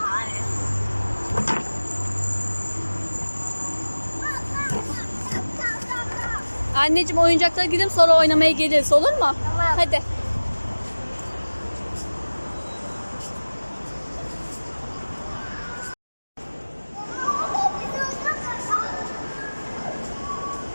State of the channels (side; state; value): both; inverted; correlation -1.00